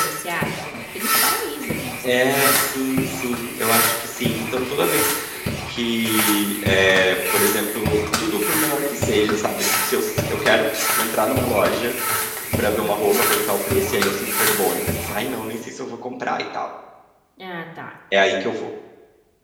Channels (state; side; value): identical; both; correlation 1.00